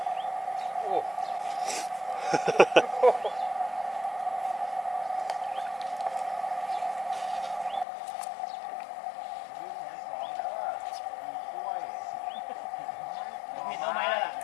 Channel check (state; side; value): drops out; right; at 7.9 s